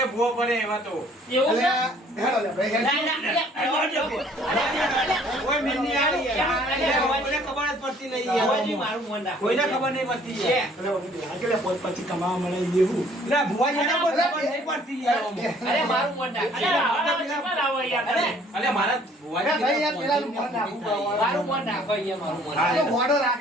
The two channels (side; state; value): both; normal; correlation 0.58